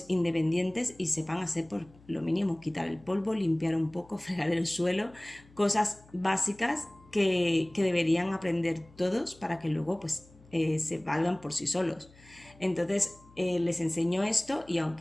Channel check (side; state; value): left; noise; hum, 26 dB below the sound